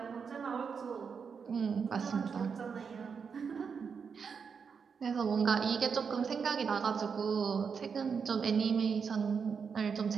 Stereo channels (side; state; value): left; quieter; 6.1 dB